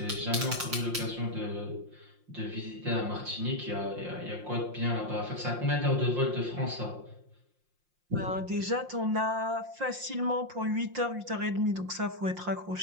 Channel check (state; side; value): late; left; 5.7 ms